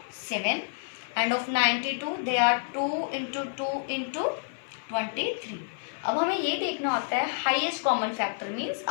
7 and of 92 they are 2 into 2 into 23. अब हमें ये देखना होता है हाईएस्ट कॉमन फैक्टर, मीन्स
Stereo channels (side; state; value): right; silent; 55 dB below the other